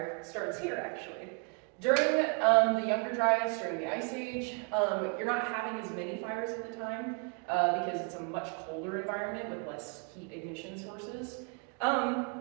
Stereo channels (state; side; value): quieter; left; 37.3 dB